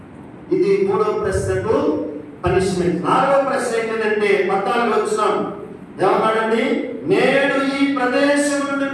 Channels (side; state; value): both; identical; correlation 1.00